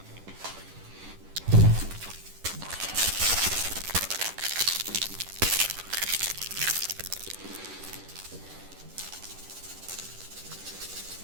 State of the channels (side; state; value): left; late; 10 ms